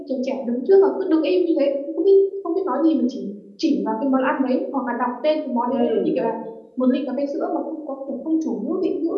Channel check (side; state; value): both; identical; correlation 1.00